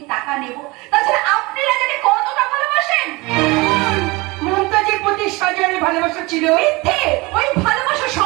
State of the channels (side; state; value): left; quieter; 23.9 dB